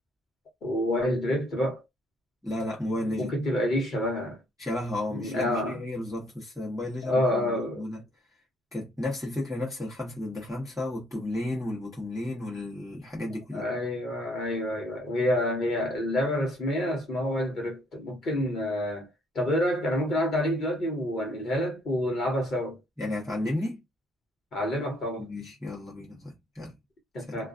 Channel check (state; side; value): normal; both; correlation 0.66